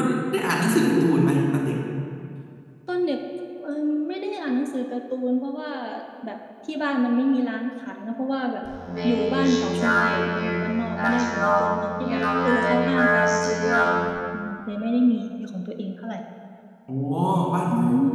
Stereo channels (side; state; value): both; identical; correlation 1.00